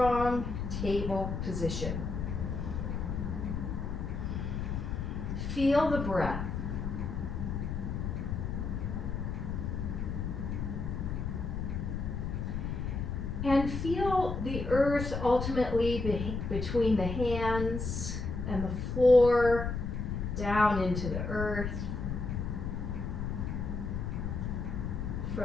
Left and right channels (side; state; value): left; noise; rumble, 3 dB below the sound